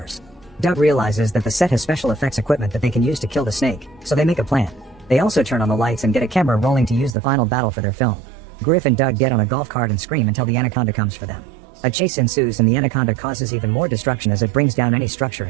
Doug realizes that the set has special effects equipment that they can use to kill the snake, so they make a plan. They also turn on the lights and get a camera rolling to use the final battle for their film. Griff and Doug get on a golf cart and scream until the anaconda comes for them. A chase ensues and the anaconda causes even more destruction as it brings down any structure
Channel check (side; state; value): left; drops out; at 7.2 s